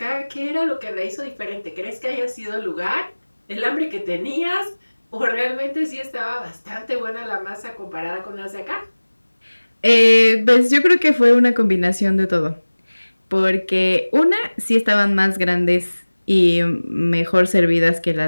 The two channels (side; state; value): both; inverted; correlation -1.00